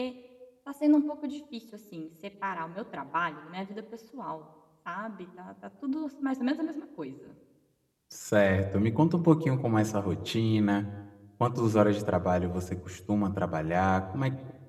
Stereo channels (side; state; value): both; identical; correlation 1.00